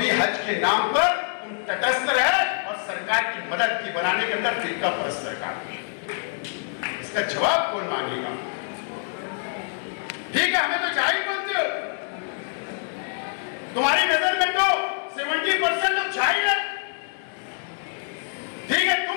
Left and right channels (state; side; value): silent; right; 61 dB below the other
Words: हज के नाम पर तुम तटस्थ रहे और सरकार की मदद की बनाने के अंदर फिरका परस्त सरकार की। इसका जवाब कौन मांगेगा? ठीक है, हमें तो जाहिल बोलते हो। तुम्हारी नजर में तो 70% लोग जाहिल है। ठीक है, तुम